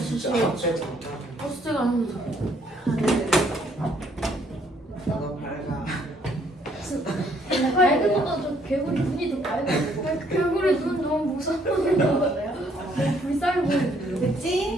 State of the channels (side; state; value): both; normal; correlation 0.66